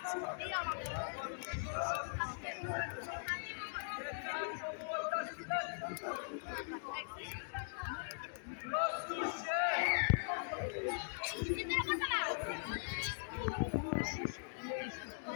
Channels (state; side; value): silent; right; digital silence